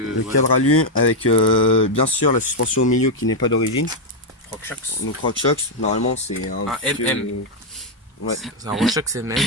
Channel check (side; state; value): both; normal; correlation 0.00